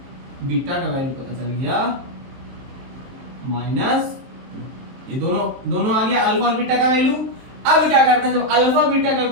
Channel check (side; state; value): left; late; 23 ms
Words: बीटा का वैल्यू पता चल गया -2। ये दोनों आ गया, अल्फा और बीटा का वैल्यू। अब क्या करते हैं, जब अल्फा बीटा का